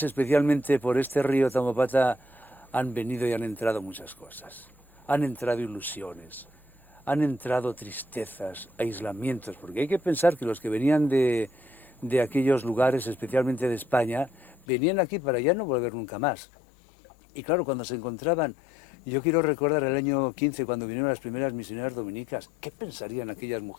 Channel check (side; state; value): right; drops out; at 14.7 s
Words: especialmente por este río Tambopata, han venido y han entrado muchas cosas. Han entrado ilusiones, han entrado tristezas, aislamientos, porque hay que pensar que los que venían de aquellos lugares, especialmente de España, venían aquí para ya no volver nunca más. Y claro, cuando se encontraban, yo quiero recordar el año 15, cuando vinieron las primeras misioneras dominicas, ¿qué pensarían aquellas